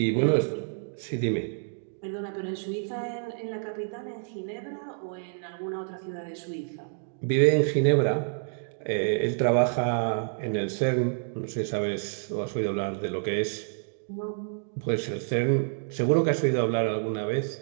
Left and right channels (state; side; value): silent; left; digital silence